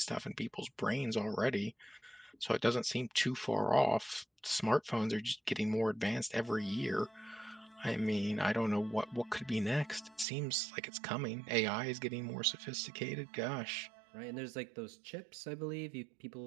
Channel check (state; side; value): drops out; left; at 10.2 s